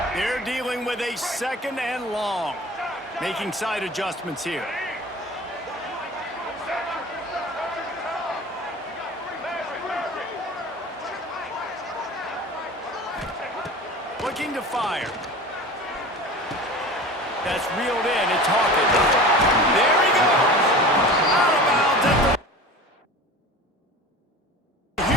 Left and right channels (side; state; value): both; normal; correlation 0.36